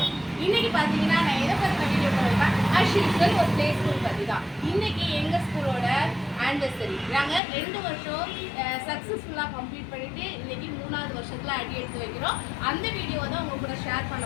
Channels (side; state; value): right; drops out; at 7.4 s